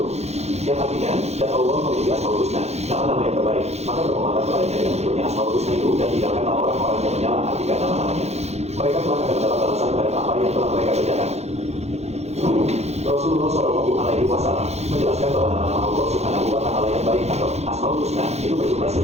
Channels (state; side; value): late; left; 0.31 ms